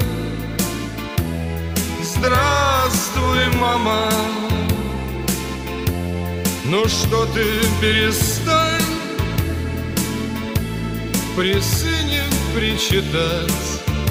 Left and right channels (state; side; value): identical; both; correlation 1.00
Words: Здравствуй, мама. Ну что ты, перестань при сыне причитать.